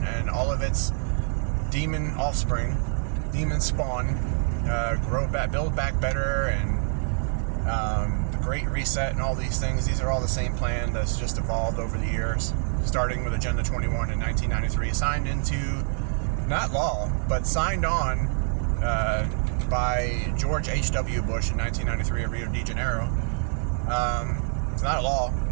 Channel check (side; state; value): left; silent; 61 dB below the other